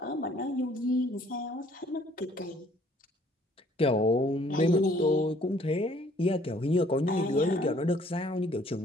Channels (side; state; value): both; normal; correlation 0.59